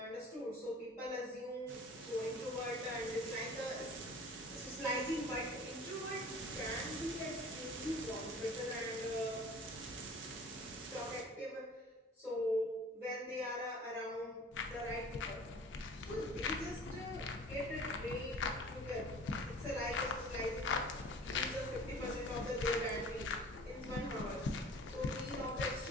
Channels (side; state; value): both; normal; correlation 0.45